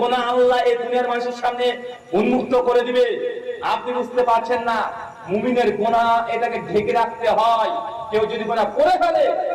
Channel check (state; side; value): identical; both; correlation 1.00